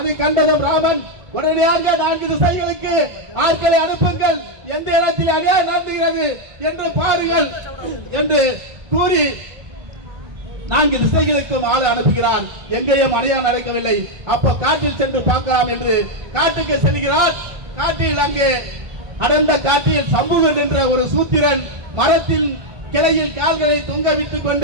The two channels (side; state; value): left; late; 2.2 ms